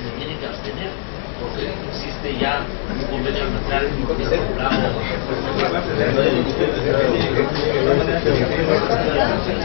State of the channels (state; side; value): silent; right; 60 dB below the other